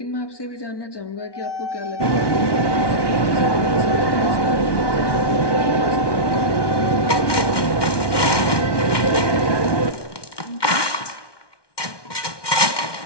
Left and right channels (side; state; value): right; late; 1.2 ms